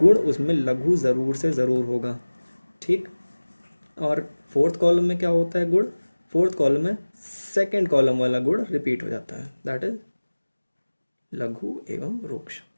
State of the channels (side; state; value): both; inverted; correlation -1.00